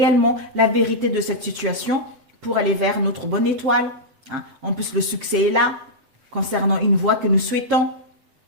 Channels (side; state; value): left; late; 7.6 ms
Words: la vérité de cette situation, pour aller vers notre bonne étoile. En plus, le succès est là, concernant une voie que nous souhaitons.